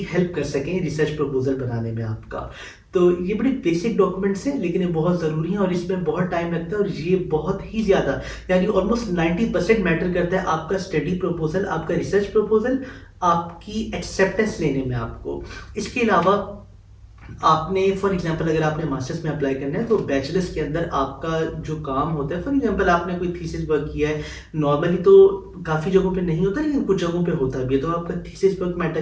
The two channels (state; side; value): identical; both; correlation 1.00